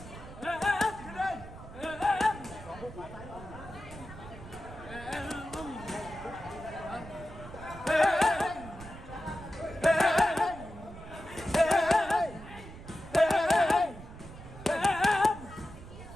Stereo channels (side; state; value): right; noise; rumble, 15 dB below the sound